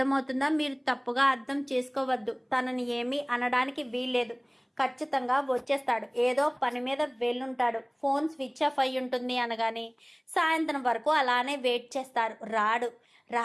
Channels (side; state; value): both; identical; correlation 1.00